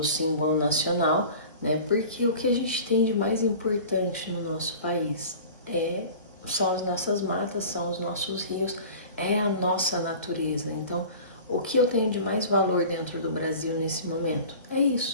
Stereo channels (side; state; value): both; inverted; correlation -0.40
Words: símbolo nacional, né? Porque o que a gente tem de mais importante no nosso país são as nossas matas, são os nossos rios, é a nossa natureza. Então, o que eu tenho de mais valor dentro do Brasil nesse momento é